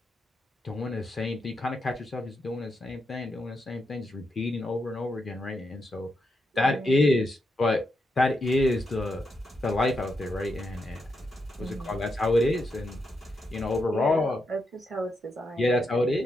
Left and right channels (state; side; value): normal; both; correlation 0.83